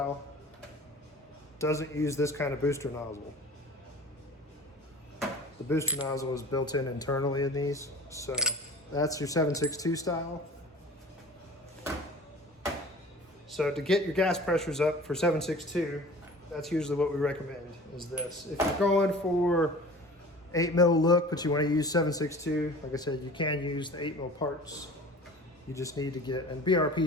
doesn't use this kind of booster nozzle. The booster nozzle is built in internally in these. So that's your 7.62 style. So to get your gas pressures up for 7.62, that's usually what we recommend, is this. If you're going for 8 mil look, but you want to use 7.62, like I said, you can use the 8 mil parts. You just need to get, and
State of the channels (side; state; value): both; normal; correlation 0.42